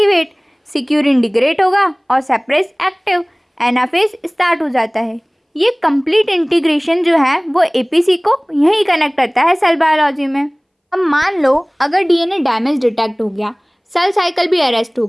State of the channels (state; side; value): identical; both; correlation 1.00